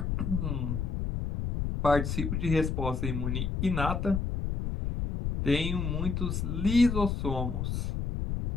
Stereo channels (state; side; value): noise; left; rumble, 1 dB below the sound